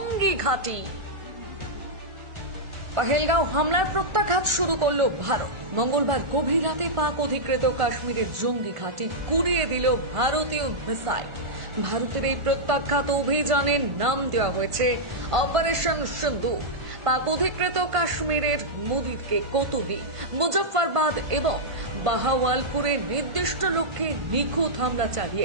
ঘাঁটি। পহেলগাঁও হামলার প্রত্যাঘাত শুরু করল ভারত। মঙ্গলবার গভীর রাতে পাক অধিকৃত কাশ্মীরের জঙ্গি ঘাঁটি গুড়িয়ে দিল ভারতীয় মিসাইল। ভারতের এই প্রত্যাঘাত অভিযানের নাম দেওয়া হয়েছে অপারেশন সিন্দুর। পাক অধিকৃত কাশ্মীরের মুদিরকে কোতোলি, মুজফ্ফরবাদ এবং বাহাওয়ালপুরে নির্দিষ্ট লক্ষ্যে নিখুঁত হামলা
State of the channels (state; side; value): late; left; 1.5 ms